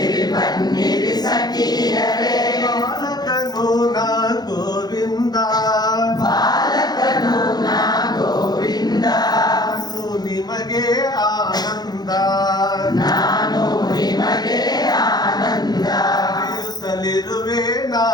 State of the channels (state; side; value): late; right; 0.19 ms